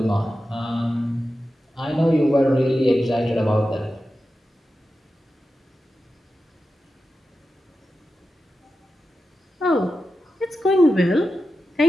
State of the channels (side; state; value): both; normal; correlation 0.91